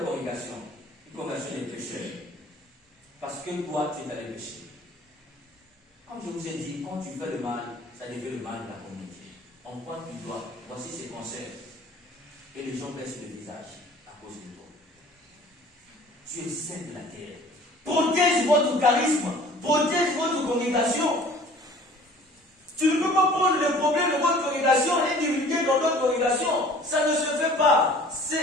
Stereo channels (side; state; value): both; normal; correlation 0.49